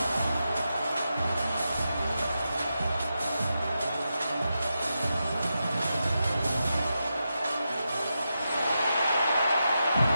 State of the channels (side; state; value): both; inverted; correlation -0.88